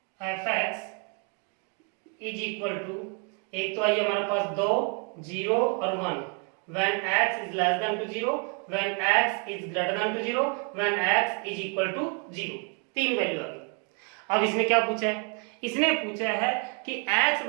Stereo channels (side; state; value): left; quieter; 36.4 dB